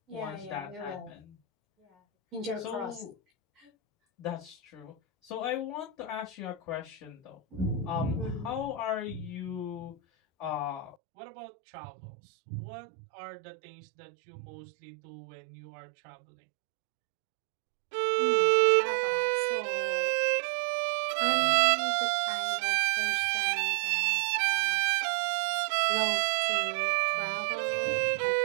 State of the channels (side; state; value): left; drops out; at 11.0 s